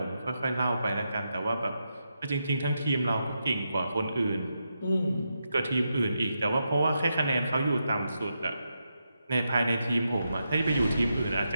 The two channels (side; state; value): both; inverted; correlation -0.85